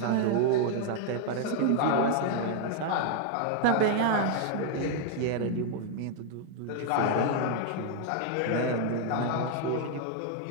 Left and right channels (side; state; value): both; different; correlation 0.00